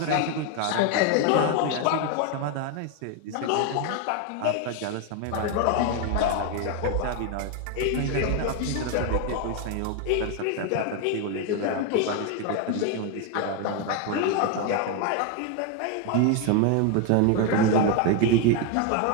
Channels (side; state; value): both; different; correlation 0.01